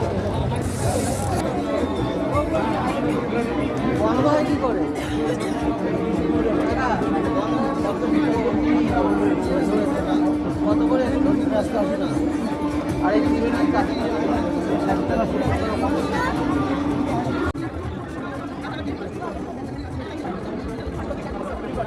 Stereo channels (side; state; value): both; identical; correlation 1.00